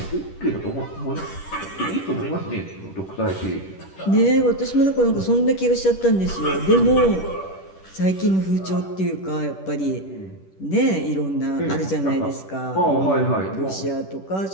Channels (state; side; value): late; right; 10 ms